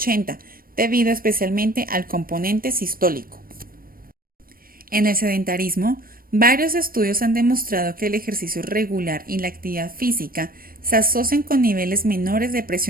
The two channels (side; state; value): left; late; 0.42 ms